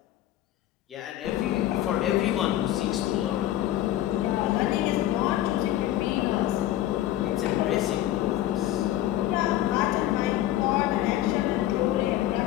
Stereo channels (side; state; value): right; quieter; 13.6 dB